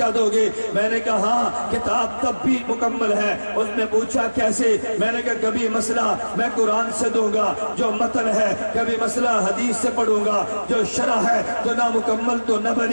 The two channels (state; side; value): inverted; both; correlation -1.00